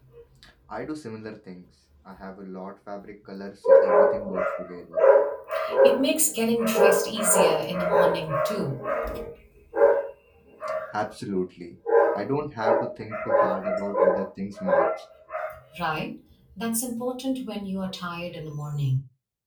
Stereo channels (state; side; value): identical; both; correlation 1.00